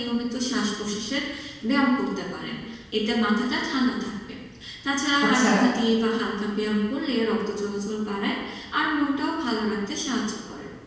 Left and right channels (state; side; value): identical; both; correlation 1.00